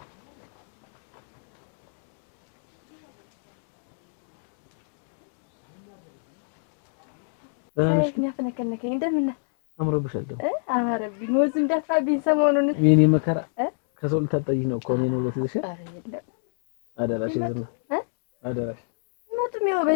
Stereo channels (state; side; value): silent; right; digital silence